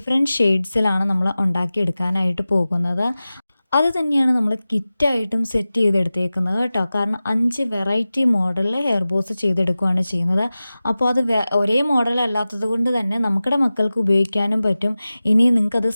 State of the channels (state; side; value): inverted; both; correlation -0.96